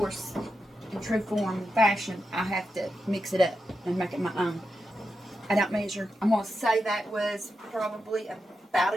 in true form and fashion, I have to mix it up and make it my own. I don't measure. I'm going to say that was probably about a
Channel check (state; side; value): normal; both; correlation 0.88